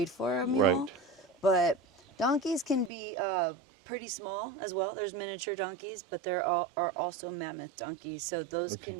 for a mule. Right. But donkeys can be pretty small as well. There's miniature donkeys, but there are also mammoth donkeys. So those can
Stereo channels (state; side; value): drops out; left; at 2.9 s